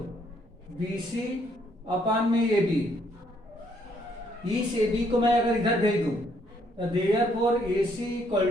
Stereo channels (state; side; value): normal; both; correlation 0.69